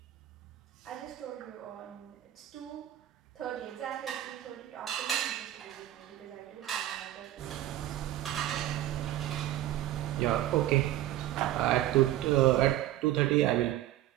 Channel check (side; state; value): left; quieter; 13.9 dB